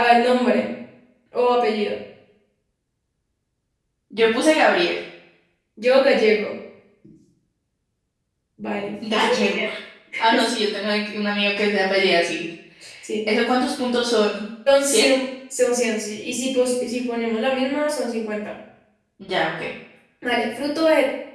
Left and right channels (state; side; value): identical; both; correlation 1.00